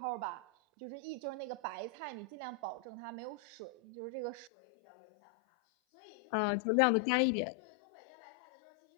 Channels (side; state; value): right; drops out; at 4.5 s